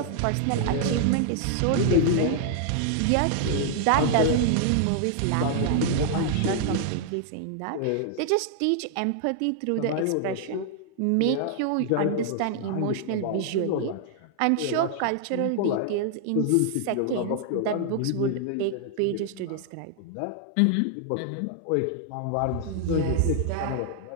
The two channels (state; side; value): different; both; correlation -0.01